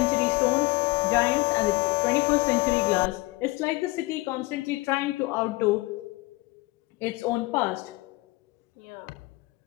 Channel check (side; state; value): right; quieter; 22.0 dB